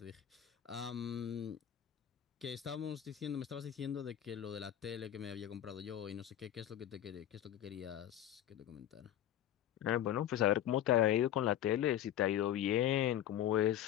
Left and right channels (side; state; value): right; quieter; 11.3 dB